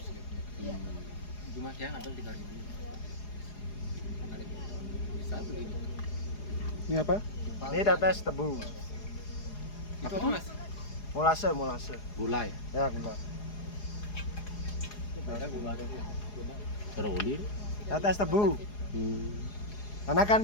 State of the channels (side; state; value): right; late; 4.8 ms